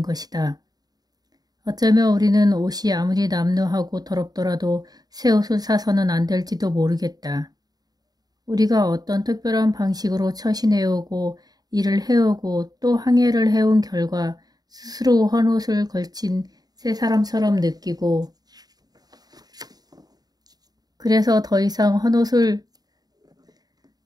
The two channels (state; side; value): late; left; 0.19 ms